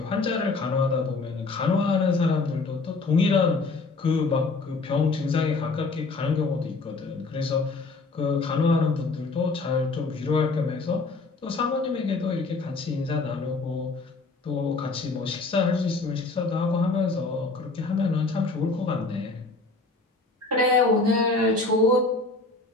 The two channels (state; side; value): quieter; right; 3.7 dB